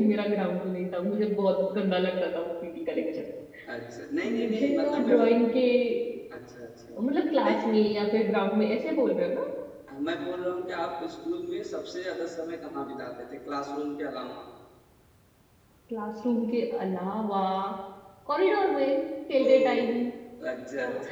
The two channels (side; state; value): both; identical; correlation 1.00